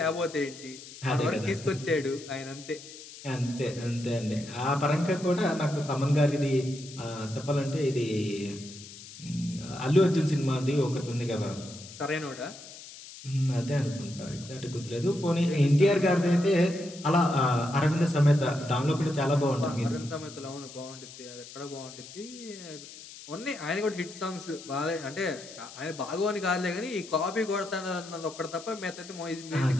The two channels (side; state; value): left; noise; hiss, 16 dB below the sound